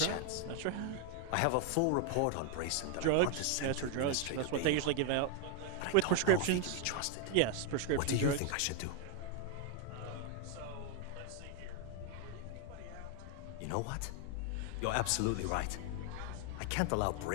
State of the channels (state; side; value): different; both; correlation 0.00